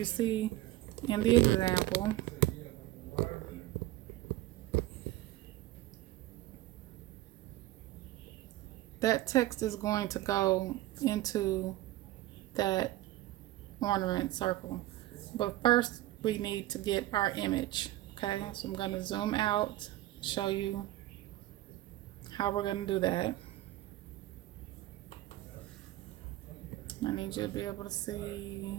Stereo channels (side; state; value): left; quieter; 16.2 dB